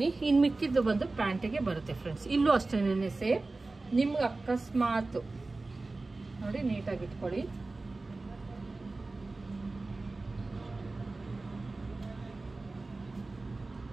ಇನ್ನು ಮಿಕ್ಕಿದ್ದು ಬಂದು ಪ್ಯಾಂಟಿಗೆ ಬರುತ್ತೆ ಫ್ರೆಂಡ್ಸ್. ಇಲ್ಲೂ ಅಷ್ಟೇನೆ ಸೇಮ್. ನಿಮ್ಗೆ ಅಕಸ್ಮಾತ್ ನೋಡಿ ನೀಟಾಗಿ ಇಟ್ಕೊಳ್ಳಿ.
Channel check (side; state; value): left; quieter; 3.4 dB